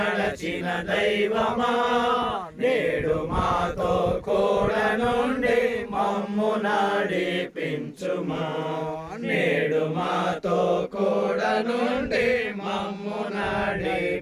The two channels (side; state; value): both; identical; correlation 1.00